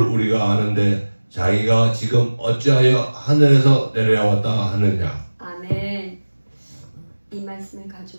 우리가 아는데 자기가 지금 어찌하여 하늘에서 내려왔다 하느냐. 아멘. 이 말씀을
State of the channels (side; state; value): both; inverted; correlation -1.00